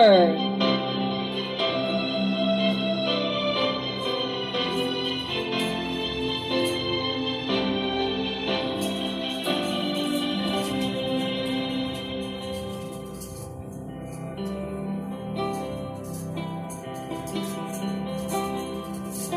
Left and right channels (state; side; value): identical; both; correlation 1.00